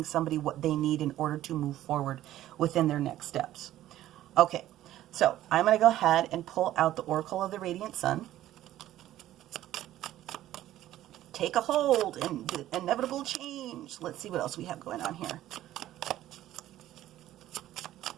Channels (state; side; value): quieter; left; 13.6 dB